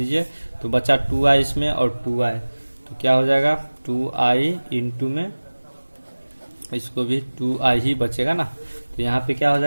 तो बचा 2i इसमें और 2i, तो क्या हो जाएगा 2i इंटू में इसको भी 2i ही बचेगा ना। तो यहाँ पे क्या हो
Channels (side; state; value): both; inverted; correlation -1.00